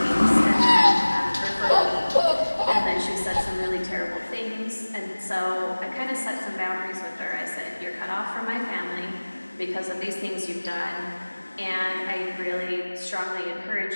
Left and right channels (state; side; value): inverted; both; correlation -1.00